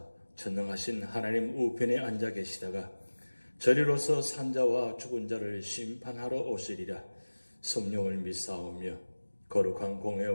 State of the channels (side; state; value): both; inverted; correlation -1.00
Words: 전능하신 하나님 우편에 앉아 계시다가 저리로서 산자와 죽은 자를 심판하러 오시리라. 성령을 믿사오며 거룩한